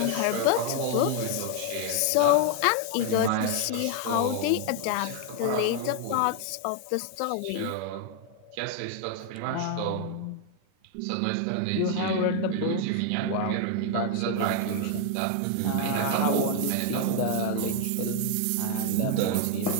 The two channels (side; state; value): both; different; correlation 0.00